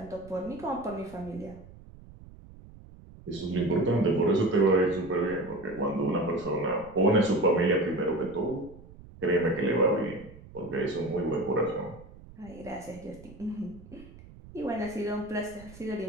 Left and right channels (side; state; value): right; noise; rumble, 19 dB below the sound